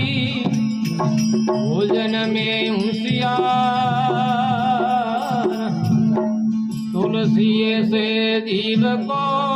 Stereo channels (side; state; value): both; identical; correlation 1.00